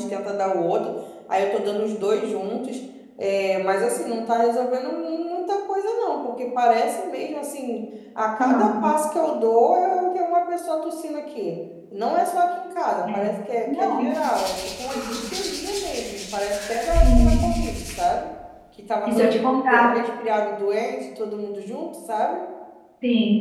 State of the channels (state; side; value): identical; both; correlation 1.00